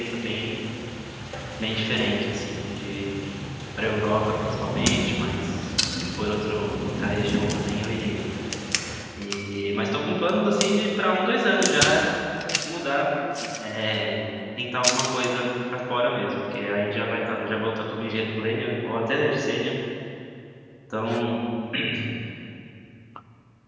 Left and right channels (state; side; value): identical; both; correlation 1.00